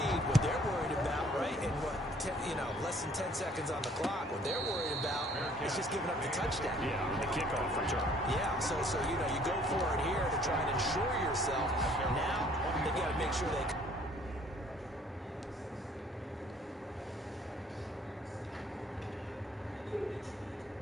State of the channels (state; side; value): normal; both; correlation 0.58